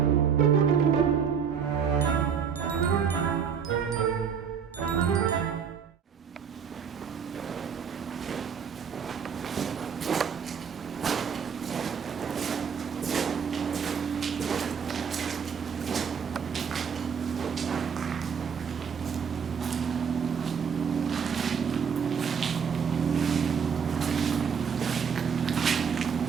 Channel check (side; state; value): left; quieter; 6.9 dB